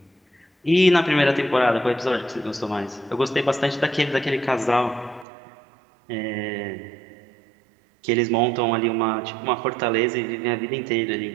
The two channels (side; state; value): left; drops out; at 5.2 s